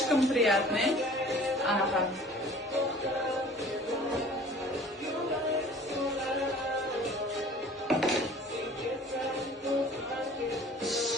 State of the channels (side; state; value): both; normal; correlation 0.47